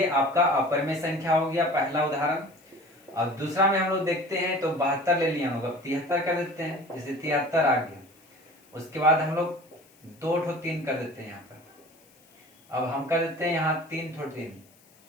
आपका अपरिमेय संख्या हो गया पहला उदाहरण। अब दूसरा में हम लोग देखते हैं तो 72 ले लिया हम लोग, अब 73 कर देते हैं, जैसे 73 आ गया। उसके बाद हम लोग 2 ठो 3 कर देते हैं यहाँ पर, अब हम कर देते हैं यहाँ 3 ठो 3,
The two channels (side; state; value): left; noise; hiss, 30 dB below the sound